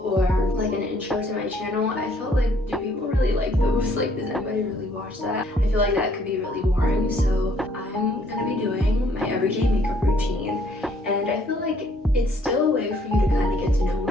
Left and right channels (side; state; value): both; normal; correlation 0.63